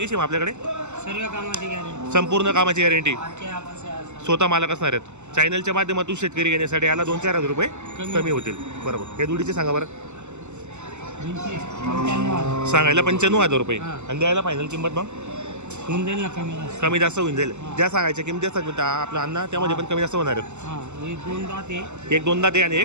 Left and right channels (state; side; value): late; left; 0.83 ms